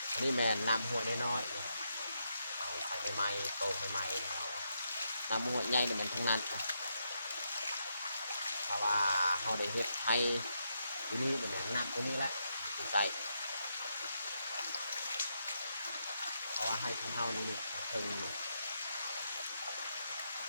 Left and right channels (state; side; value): inverted; both; correlation -0.81